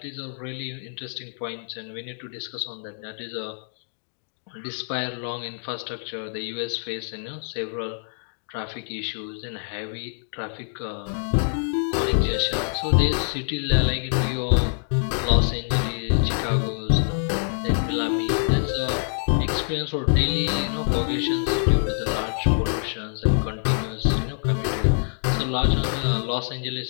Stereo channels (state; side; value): silent; right; digital silence